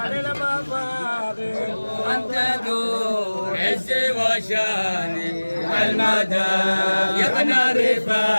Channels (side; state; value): both; inverted; correlation -1.00